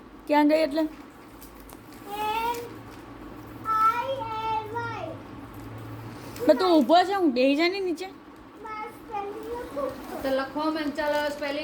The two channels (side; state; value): both; identical; correlation 1.00